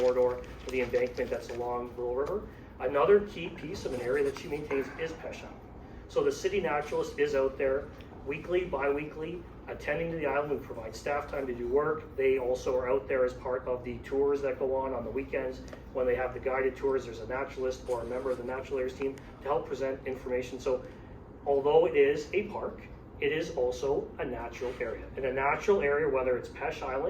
for the embankment that's along Little River. Another key piece of an area that she maintains is Peche Island. So the city naturalist is out there weekly, bi-weekly, attending to the island. We provide staff time to do work. They also are out there as part of the tours that go on the weekends. When they have the guided tours, there's a naturalist or a member of the natural areas team to help present information. So although it is a park, it is also a natural area. In a natural area, whether it's Peche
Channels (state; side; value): identical; both; correlation 1.00